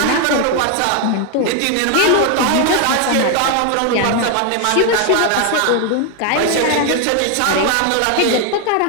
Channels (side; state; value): both; different; correlation 0.01